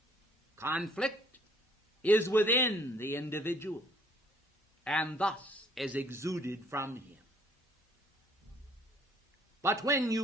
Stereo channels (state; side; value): normal; both; correlation 0.60